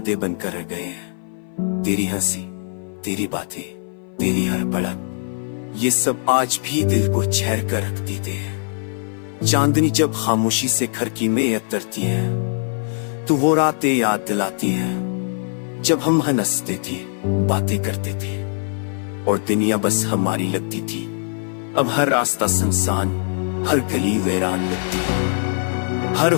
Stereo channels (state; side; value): silent; right; 57 dB below the other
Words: बनकर रह गए हैं। तेरी हंसी, तेरी बातें, तेरी हर पलक, ये सब आज भी दिल को छेड़ कर रख देते हैं। चांदनी जब खामोशी से खिड़की में उतरती है तो वो रातें याद दिलाती है जब हम हंसते थे, बातें करते थे और दुनिया बस हमारी लगती थी। अब हर रास्ता सुनसान, हर गली वीरान लगती है। हर